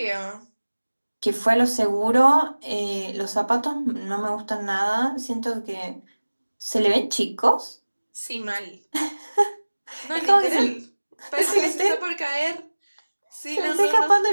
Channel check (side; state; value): both; inverted; correlation -1.00